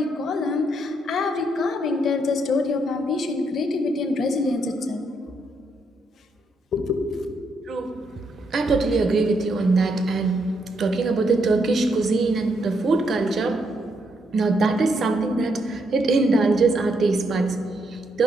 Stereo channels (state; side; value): normal; both; correlation 0.77